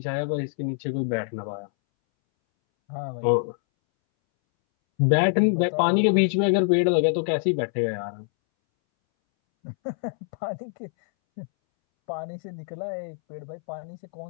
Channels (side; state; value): right; silent; 61 dB below the other